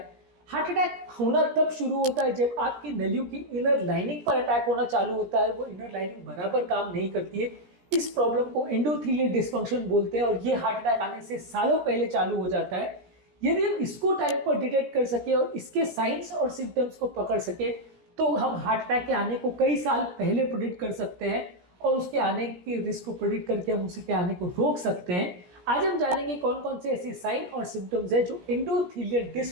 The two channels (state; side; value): late; left; 17 ms